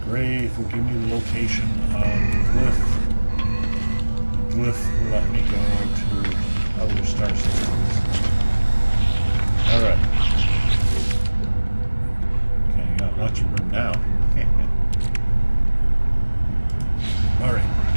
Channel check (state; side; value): inverted; both; correlation -1.00